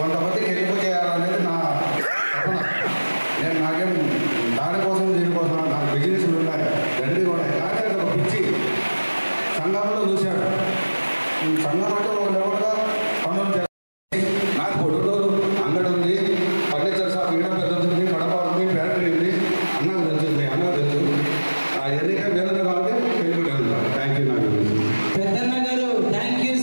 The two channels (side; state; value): both; inverted; correlation -1.00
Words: హెల్ప్ చేయాలనేది నా తపన. నేను నాకేం దానికోసం దీనికోసం నాకు బిజినెస్లు ఉన్నాయి, తండ్రి కూడా. కానీ అది ఒక పిచ్చి సంఘంలో చూశాడు. సంఘం అంటే ఒక లెవెల్గా పనులు చేయాలి. నాకు పొడుగురు అంగడి ఉంది, ఫర్నిచర్ షాప్ ఈడ పెద్దది, కడప ఉంది, ఫ్యాక్టరీ ఉంది. అన్నకు తెలుస్తుంది, అన్నకు తెలుసు. ఎన్నిక వేరే కాబట్టి పెళ్ళిపోయింది. Thank you. నాకు పెద్దన్న గారు thank you